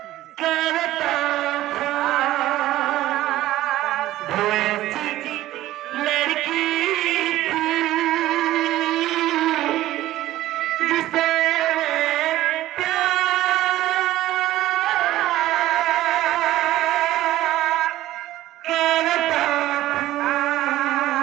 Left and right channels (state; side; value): quieter; left; 15.1 dB